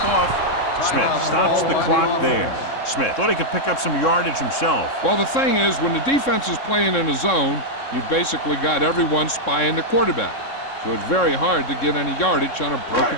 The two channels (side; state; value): right; late; 3.7 ms